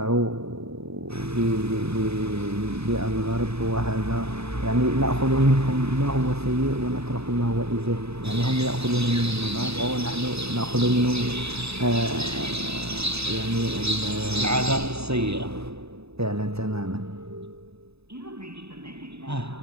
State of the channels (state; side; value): late; left; 0.79 ms